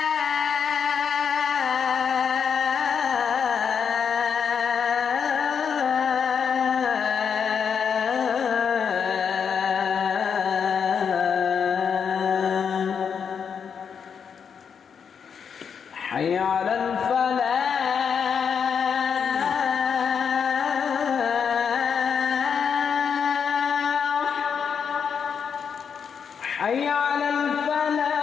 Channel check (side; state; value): right; quieter; 6.9 dB